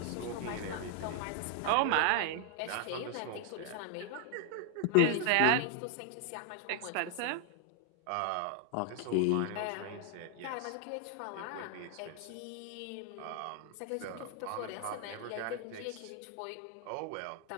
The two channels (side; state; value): both; different; correlation 0.00